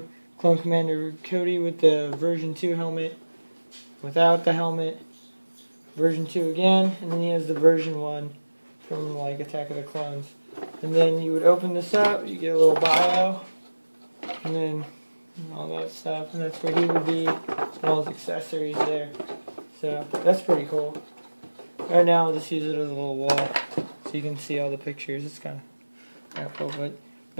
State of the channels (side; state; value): both; inverted; correlation -1.00